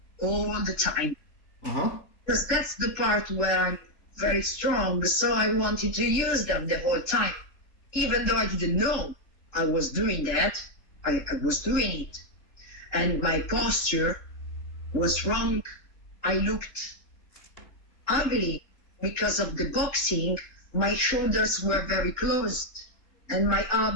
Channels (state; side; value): late; right; 3.6 ms